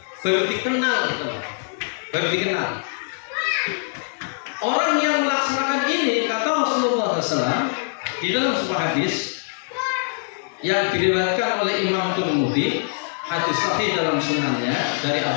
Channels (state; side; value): silent; right; digital silence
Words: dikenal, baru dikenal. Orang yang melaksanakan ini, kata Rasulullah SAW di dalam sebuah hadis yang diriwayatkan oleh Imam Tirmidzi, hadis sahih dalam sunannya dari